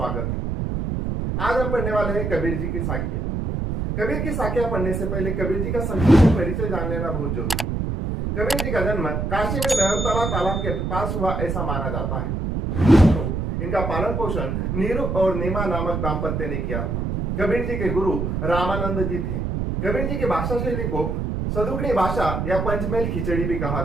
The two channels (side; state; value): right; noise; rumble, 2 dB below the sound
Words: है। आज हम पढ़ने वाले हैं कबीर जी की साखियां। कबीर की साखियां पढ़ने से पहले कबीर जी का संक्षिप्त परिचय जान लेना बहुत जरूरी है। कबीर जी का जन्म काशी में नहरतला तालाब के पास हुआ ऐसा माना जाता है। तो इनका पालन पोषण नीरू और नीमा नामक दाम्पत्य ने किया था। कबीर जी के गुरु रामानंद जी थे। कबीर जी की भाषा शैली को सदुकड़ी भाषा या पंचमेल खिचड़ी भी कहा